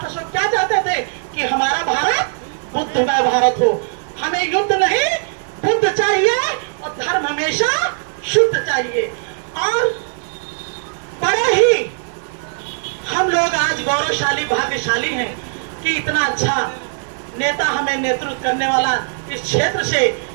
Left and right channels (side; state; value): left; silent; 67 dB below the other